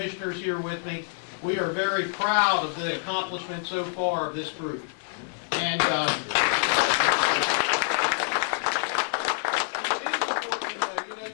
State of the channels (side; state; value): right; silent; digital silence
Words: here with me, we are very proud of the accomplishment so far of this group. And it is